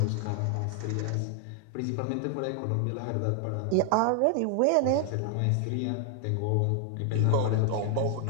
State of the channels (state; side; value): different; both; correlation 0.00